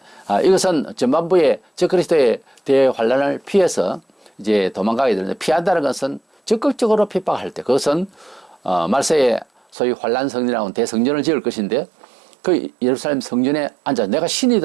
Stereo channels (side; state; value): left; drops out; at 9.8 s